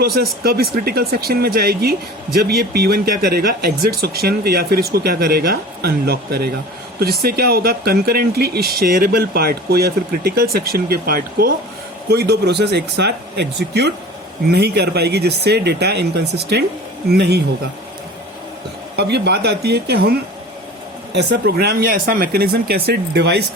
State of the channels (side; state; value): both; normal; correlation 0.39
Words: कब इस क्रिटिकल सेक्शन में जाएगी? जब ये P1 क्या करेगा? एग्जिट सेक्शन, या फिर इसको क्या करेगा? अनलॉक करेगा। तो जिससे क्या होगा? कंकरेंटली इस शेयरेबल पार्ट को या फिर क्रिटिकल सेक्शन के पार्ट को कोई दो प्रोसेस एक साथ एग्जीक्यूट नहीं कर पाएगी, जिससे डेटा इनकंसिस्टेंट नहीं होगा। अब ये बात आती है कि हम ऐसा प्रोग्राम या ऐसा मैकेनिज्म कैसे डिवाइस